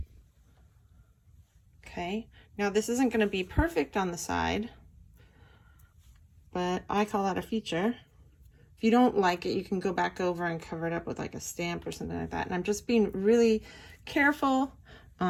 Okay, now this isn't going to be perfect on the side, but I call that a feature. If you don't like it, you can go back over and cover it up with like a stamp or something like that. And I'm just being really careful.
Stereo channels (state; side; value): identical; both; correlation 1.00